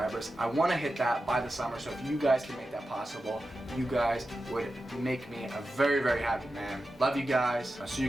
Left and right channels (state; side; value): normal; both; correlation 0.92